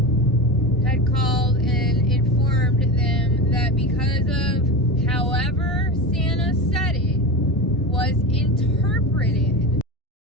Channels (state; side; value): normal; both; correlation 0.25